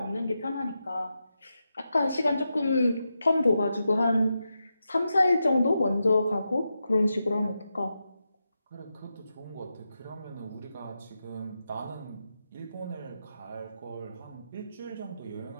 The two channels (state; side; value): inverted; both; correlation -0.88